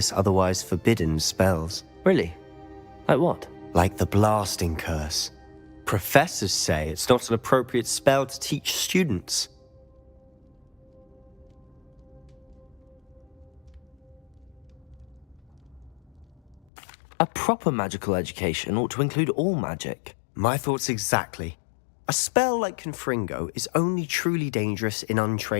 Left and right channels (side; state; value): right; drops out; at 16.6 s